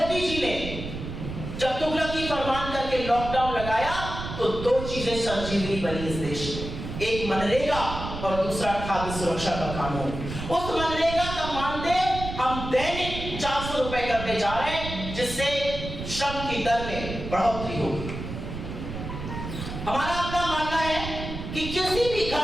जी ने जब तुगलकी फरमान करके लॉकडाउन लगाया, तो 2 चीजें संजीवनी बनी इस देश में, एक मनरेगा और दूसरा खाद्य सुरक्षा का कानून। उस मनरेगा का मानदेय हम दैनिक 400 रुपए करने जा रहे हैं, जिससे श्रम की दर में बढ़ोतरी होगी। हमारा अपना मानना है कि किसी भी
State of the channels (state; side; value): noise; right; rumble, 7 dB below the sound